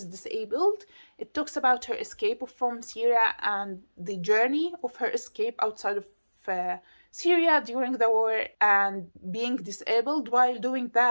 disabled. It talks about her escape from Syria and the journey of her escape outside of Syria during the war and being disabled while doing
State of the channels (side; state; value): both; inverted; correlation -1.00